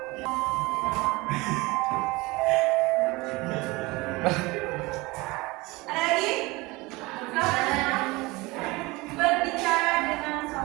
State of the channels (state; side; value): quieter; left; 23.0 dB